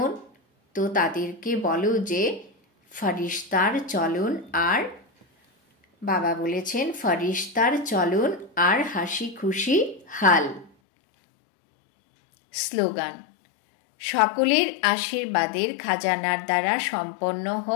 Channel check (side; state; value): right; drops out; at 10.7 s